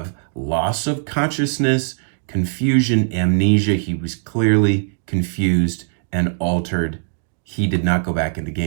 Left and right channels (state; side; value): silent; left; digital silence